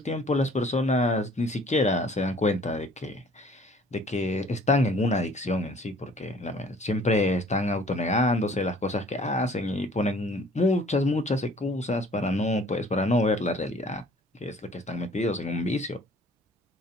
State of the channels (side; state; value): both; normal; correlation 0.54